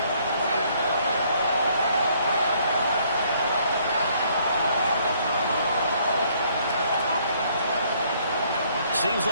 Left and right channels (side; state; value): both; inverted; correlation -0.65